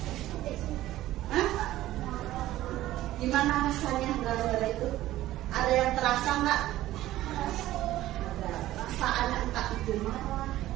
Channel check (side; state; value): left; quieter; 15.0 dB